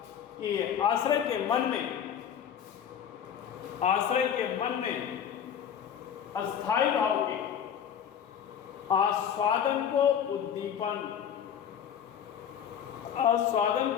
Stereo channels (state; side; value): quieter; right; 8.6 dB